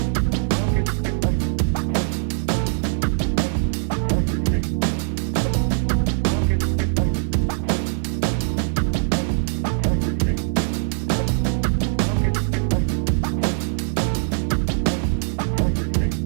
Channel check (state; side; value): silent; left; digital silence